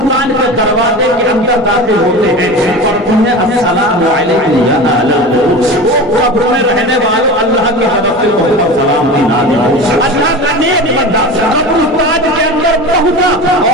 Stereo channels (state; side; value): normal; both; correlation 0.31